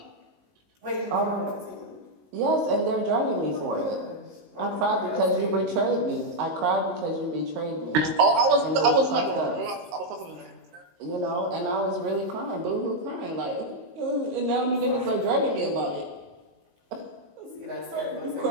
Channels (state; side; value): late; left; 19 ms